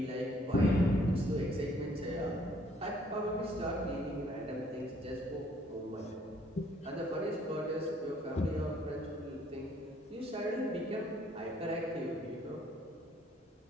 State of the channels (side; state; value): both; normal; correlation 0.63